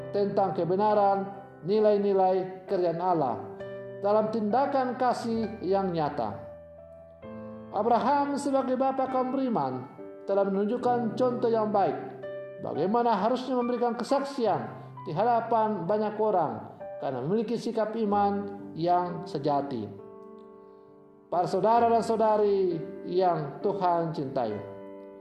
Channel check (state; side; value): identical; both; correlation 1.00